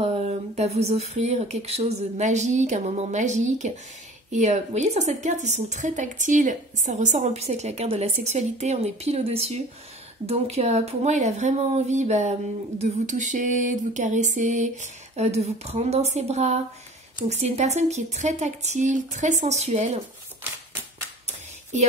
vous offrir quelque chose de magique, un moment magique. Et vous voyez, sur cette carte, ils sont très tactiles. Ça ressort en plus avec la carte de la sexualité. On est pile au-dessus. Donc, pour moi, il a vraiment envie de vous toucher, de vous caresser, de vous prendre dans ses bras. Donc, c'est une personne qui est très tactile, très sensuelle. Et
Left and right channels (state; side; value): normal; both; correlation 0.43